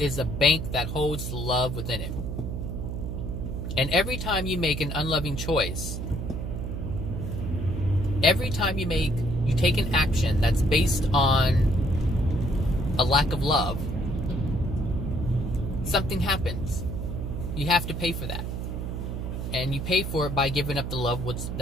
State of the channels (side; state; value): right; noise; hum, 4 dB below the sound